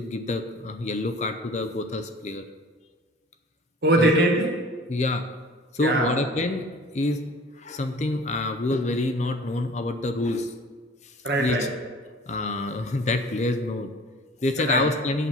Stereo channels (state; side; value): normal; both; correlation 0.45